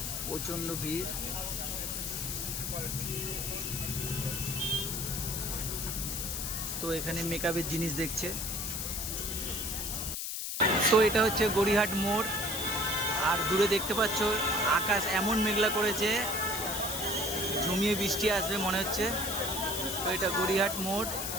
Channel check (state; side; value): noise; left; hiss, 3 dB below the sound